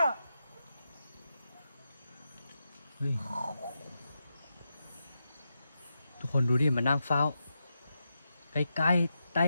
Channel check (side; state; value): both; inverted; correlation -0.87